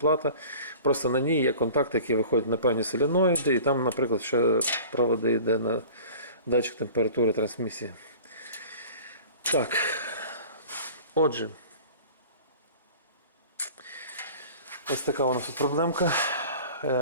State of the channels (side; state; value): both; inverted; correlation -0.42